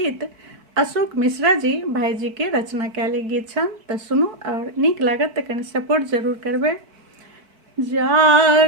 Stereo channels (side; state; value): left; late; 4.5 ms